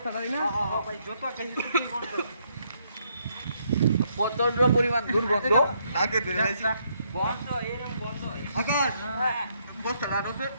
না ভাই, যত গন্ধ, প্রচন্ড পরিমাণ দুর্গন্ধ। আগে ধরে গন্ধ, এরকম গন্ধ। আকাশ, বস্তাটা আনো স্যার,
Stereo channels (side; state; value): both; inverted; correlation -0.73